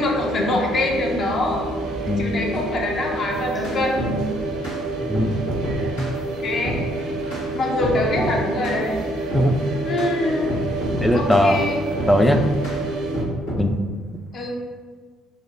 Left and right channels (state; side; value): normal; both; correlation 0.70